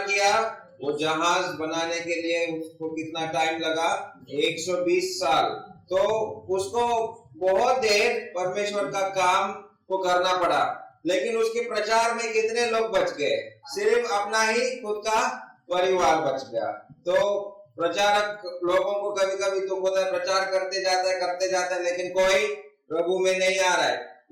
किया। वो जहाज बनाने के लिए उसको कितना टाइम लगा? 120 साल। तो उसको बहुत देर परमेश्वर का काम को करना पड़ा। लेकिन उसके प्रचार में कितने लोग बच गए? सिर्फ अपना ही खुद का परिवार बच गया। तो प्रचारक लोगों को कभी कभी दुख होता है, प्रचार करते जाता है, लेकिन कोई प्रभु में नहीं आ रहा है।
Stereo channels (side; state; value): both; identical; correlation 1.00